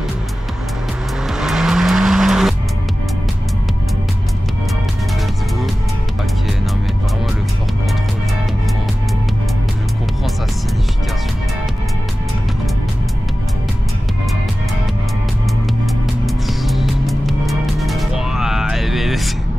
Let's go. Ok, non mais vraiment le fort contrôle, je comprends sa signification.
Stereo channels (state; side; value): normal; both; correlation 0.96